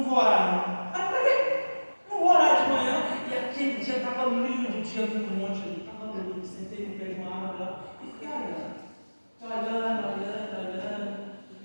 vou orar, não. Ah, por quê? Não vou orar de manhã. E aquele dia estava lindo, o dia do monte ali. Estava lindo. Sentei no pé de uma árvore lá e fiquei olhando. Olhando.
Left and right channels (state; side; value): inverted; both; correlation -1.00